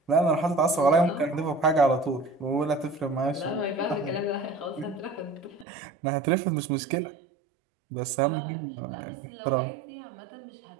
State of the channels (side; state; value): left; drops out; at 5.7 s